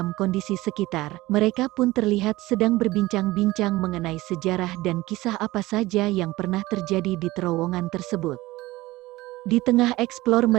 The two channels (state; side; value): quieter; left; 18.8 dB